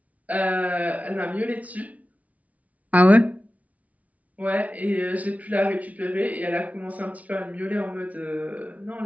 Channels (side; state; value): left; late; 0.070 ms